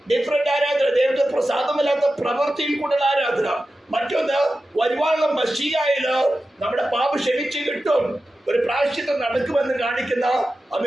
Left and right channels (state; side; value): normal; both; correlation 0.93